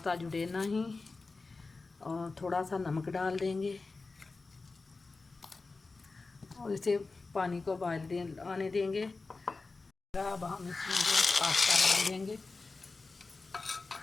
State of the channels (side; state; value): right; quieter; 3.8 dB